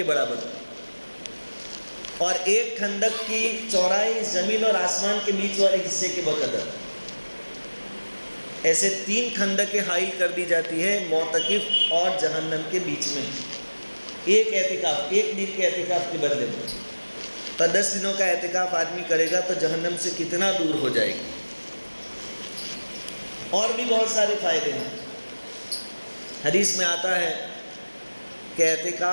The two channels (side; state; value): both; inverted; correlation -1.00